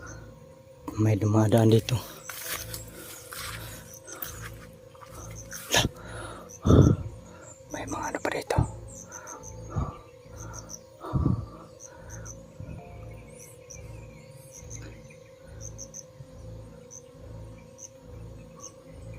May dumadaan dito.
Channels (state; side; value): identical; both; correlation 1.00